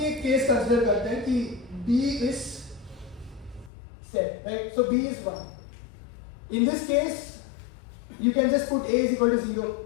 एक case consider करते हैं कि B is set, right? So B is 1. In this case, you can just put A is equal to 0.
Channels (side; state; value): right; drops out; at 3.7 s